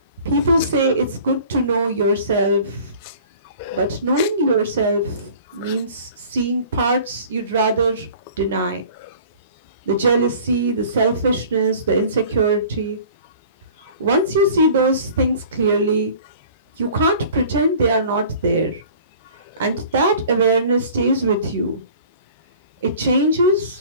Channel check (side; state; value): both; inverted; correlation -0.46